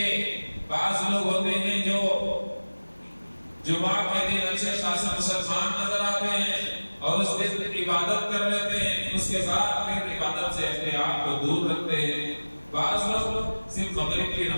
بعض لوگ ہوتے ہیں جو جمعہ کے دن اچھے خاصے مسلمان نظر آتے ہیں اور اس دن عبادت کر لیتے ہیں اس کے بعد پھر عبادت سے اپنے آپ کو دور رکھتے ہیں بعض لوگ صرف مغرب کی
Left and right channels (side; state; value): both; inverted; correlation -1.00